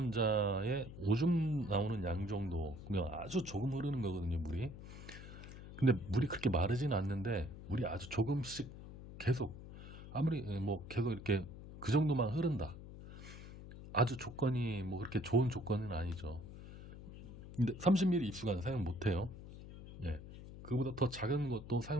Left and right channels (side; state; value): left; noise; hum, 13 dB below the sound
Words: 오줌 나오는 양 정도, 그냥 아주 조금 흐르는 거거든요, 물이. 근데 물이 그렇게 마르진 않는데 물이 아주 조금씩 계속, 아무리 계속 이렇게 그 정도만 흐른다. 아주 조건이 그렇게 좋은 조건은 아니죠. 근데 30ml 입수관 사용 못 해요. 예. 그보다 더 작은 것도